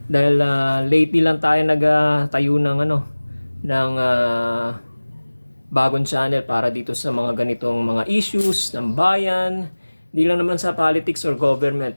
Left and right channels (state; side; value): inverted; both; correlation -1.00